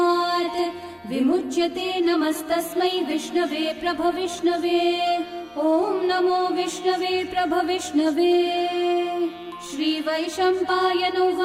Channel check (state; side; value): identical; both; correlation 1.00